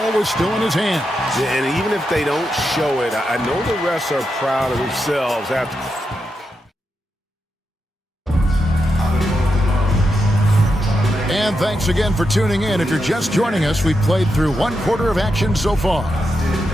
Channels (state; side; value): normal; both; correlation 0.86